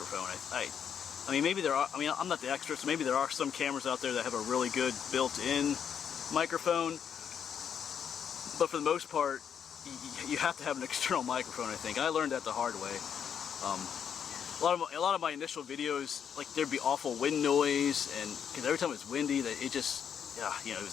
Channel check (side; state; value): right; quieter; 8.0 dB